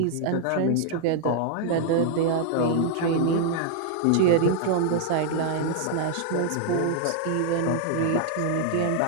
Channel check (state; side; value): different; both; correlation 0.00